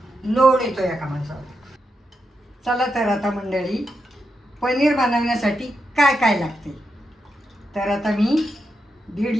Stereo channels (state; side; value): normal; both; correlation 0.85